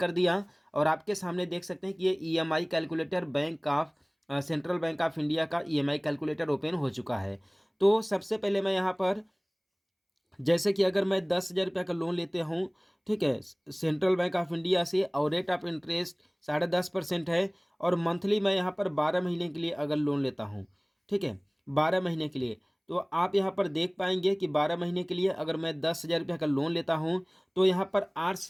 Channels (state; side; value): identical; both; correlation 1.00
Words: दिया और आपके सामने देख सकते हैं कि ये EMI calculator bank of central bank of India का ईएमआई कैलकुलेटर ओपन हो चुका है। तो सबसे पहले मैं यहाँ पर जैसे कि अगर मैं 10,000 रुपया का लोन लेते हूँ, ठीक है, सेंट्रल बैंक ऑफ इंडिया से और रेट ऑफ इंटरेस्ट 10.5% है और मंथली मैं यहाँ पर 12 महीने के लिए अगर लोन लेता हूँ, ठीक है, 12 महीने के लिए, तो आप यहाँ पर देख पाएंगे कि 12 महीने के लिए अगर मैं 10,000 रुपया का लोन लेता हूँ तो यहाँ पर